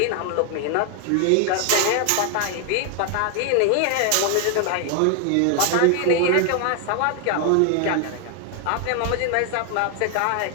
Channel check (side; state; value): both; different; correlation 0.00